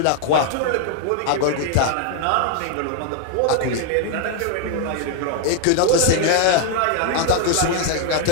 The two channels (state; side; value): different; both; correlation 0.00